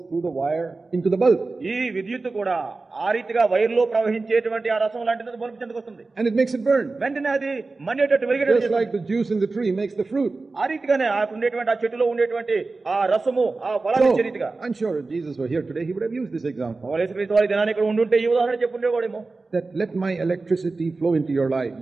through the wire into the bulb. ఈ విద్యుత్ కూడా ఆ రీతిగా వైర్లో ప్రవహించేటువంటి ఆ రసం లాంటిది బల్బు చెందుకు వస్తుంది. And it makes it burn. వెంటనే అది మండేటట్టు వెలిగేటట్టు Just like the juice in the tree makes the fruit. ఆ రీతిగానే ఆ ఉండేటువంటి ఆ చెట్టులో ఉండేటువంటి ఆ రసము ఆ ఫలాన్ని ఇచ్చే రీతిగా. I'm sure if Jesus were here today, he would have used this example. యేసుక్రీస్తు వారి దినాన్ని ఇక్కడ ఉండుంటే ఈ ఉదాహరణ చెప్పుండేవాడేమో. That let my electricity flow into your life.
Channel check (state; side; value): quieter; left; 3.7 dB